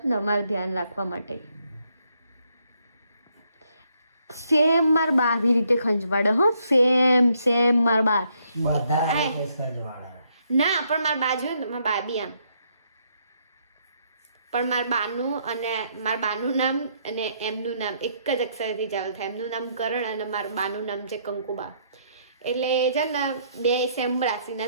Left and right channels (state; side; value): inverted; both; correlation -0.72